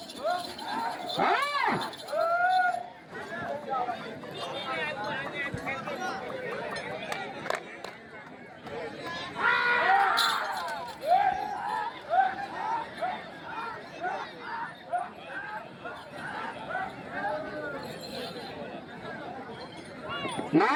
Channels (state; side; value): identical; both; correlation 1.00